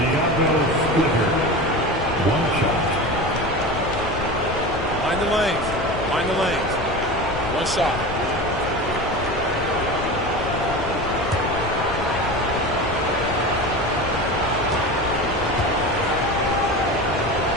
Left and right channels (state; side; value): noise; left; rumble, 8 dB below the sound